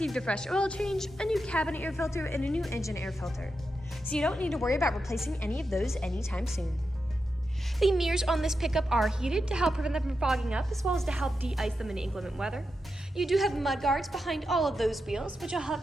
a fresh oil change, a new cabin air filter, and a new engine air filter. So you don't need to worry about replacing any of those anytime soon. The mirrors on this pickup are heated to help prevent them from fogging up, as well as to help de-ice them in inclement weather. You do have mud guards behind all of those wheels, which will help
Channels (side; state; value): both; normal; correlation 0.88